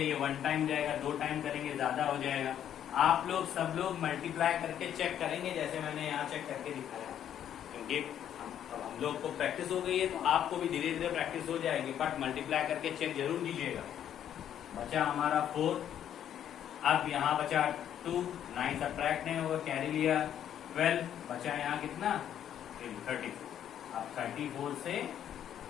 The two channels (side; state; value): right; quieter; 10.1 dB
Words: 1 टाइम जाएगा, 2 टाइम करेंगे ज्यादा हो जाएगा। आप लोग सब लोग मल्टीप्लाई करके चेक करेंगे जैसे मैंने यहाँ चेक करके दिखाया, क्योंकि हम लोग को प्रैक्टिस हो गई है तो आपको भी धीरे धीरे प्रैक्टिस हो जाएगी। बट मल्टीप्लाई करके चेक जरूर कीजिएगा। बचा हमारा 4, अब यहाँ बचा 2, 9 सबट्रैक्ट नहीं होगा, कैरी लिया 12, बचा यहाँ कितना 34। अब 34 से